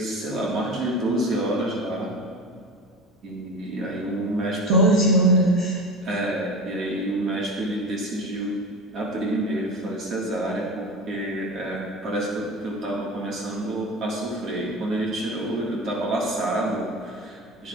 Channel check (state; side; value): normal; both; correlation 0.31